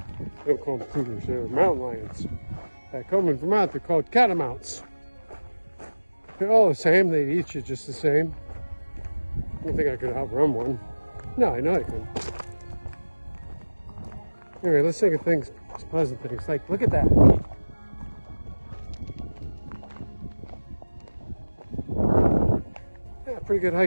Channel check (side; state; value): both; inverted; correlation -1.00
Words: They don't call them cougars, they're mountain lions. Back home in Vermont, they're called catamounts. They're all the same, they eat you just the same. I don't think I could outrun one. No, I know I can. Anyway, let's think of things, pleasant things. Like, look at that. Yeah, pretty good